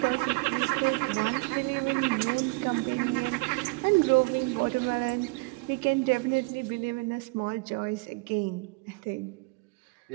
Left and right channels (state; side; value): quieter; left; 29.5 dB